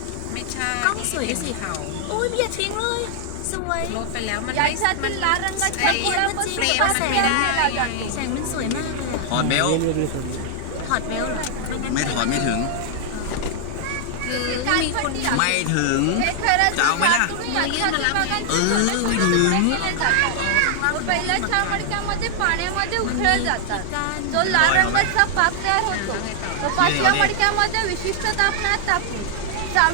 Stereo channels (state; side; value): different; both; correlation 0.00